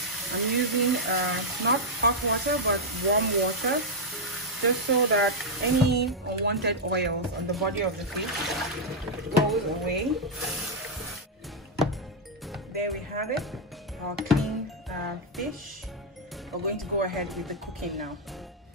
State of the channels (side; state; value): both; normal; correlation -0.03